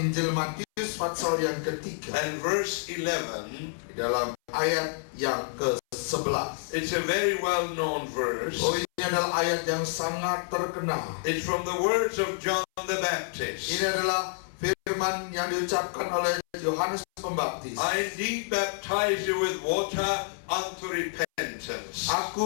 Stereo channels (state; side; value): silent; right; 59 dB below the other